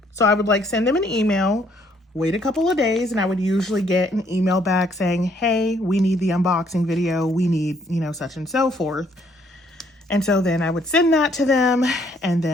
So I would like send them an email wait a couple of days, and I would usually get an email back saying, hey, we need the unboxing video. We need, you know, such and so forth. And so then I would send that to them and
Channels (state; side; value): normal; both; correlation 0.67